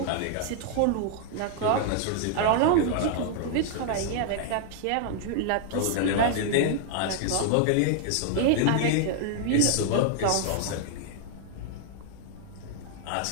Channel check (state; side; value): different; both; correlation 0.00